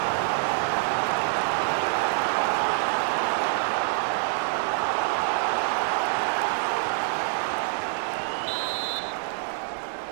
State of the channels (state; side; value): silent; left; 58 dB below the other